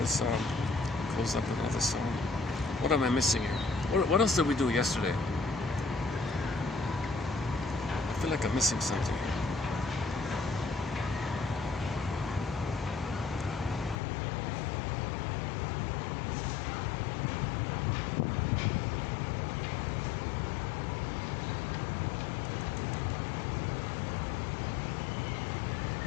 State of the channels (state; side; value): drops out; right; at 14.0 s